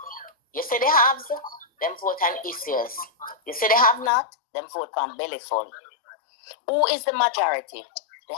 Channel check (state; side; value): drops out; right; at 4.1 s